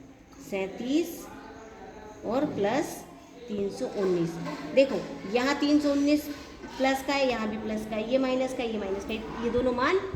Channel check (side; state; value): both; identical; correlation 1.00